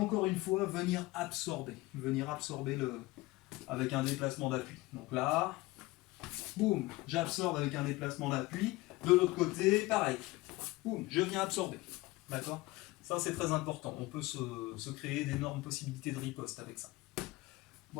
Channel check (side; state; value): right; quieter; 20.4 dB